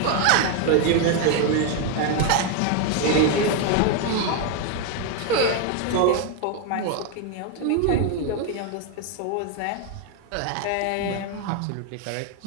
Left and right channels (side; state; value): both; different; correlation 0.01